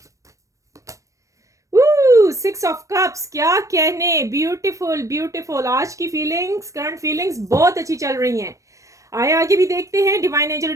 6 ऑफ कप्स, क्या कहने, ब्यूटीफुल ब्यूटीफुल। आज की फीलिंग्स, करंट फीलिंग्स बहुत अच्छी चल रही हैं। आगे भी देखते हैं। डिवाइन एंजल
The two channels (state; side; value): late; left; 0.16 ms